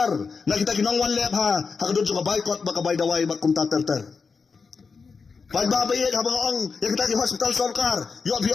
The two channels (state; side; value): quieter; right; 5.0 dB